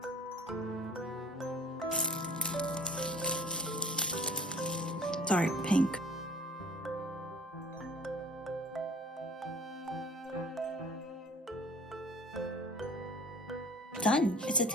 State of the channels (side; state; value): both; normal; correlation 0.48